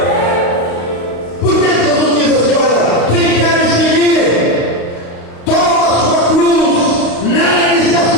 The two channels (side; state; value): right; late; 35 ms